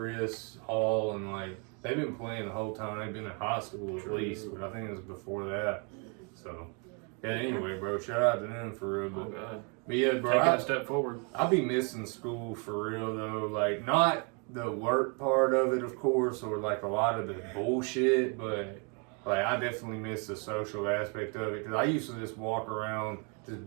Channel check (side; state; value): left; quieter; 35.5 dB